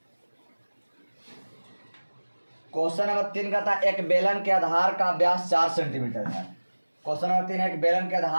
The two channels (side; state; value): both; inverted; correlation -1.00